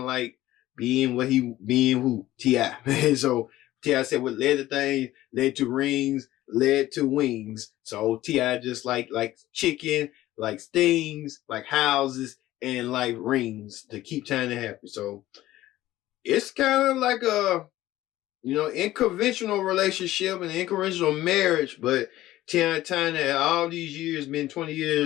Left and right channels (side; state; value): right; quieter; 15.4 dB